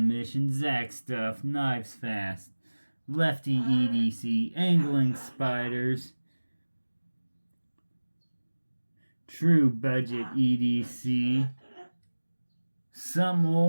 Mission, Zach Stuff, Knives Fast, Lefty EDC, Angling Spiders, True Budget EDC, Some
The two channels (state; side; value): inverted; both; correlation -1.00